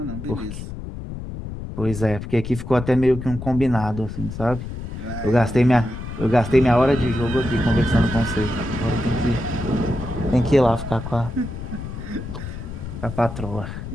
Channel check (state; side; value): noise; left; rumble, 8 dB below the sound